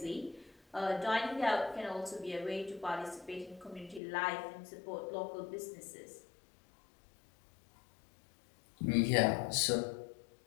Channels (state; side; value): drops out; right; at 4.0 s